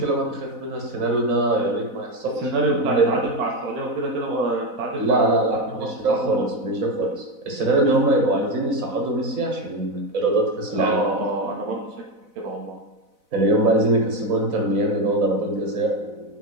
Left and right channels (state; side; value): late; left; 4.0 ms